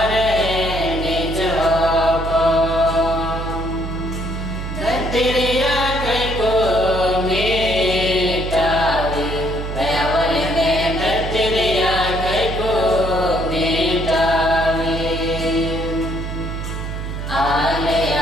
निज होपन धरतिया कई को मिटावी पैवल में धरतिया कई को मिटावी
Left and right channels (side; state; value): right; noise; hum, 5 dB below the sound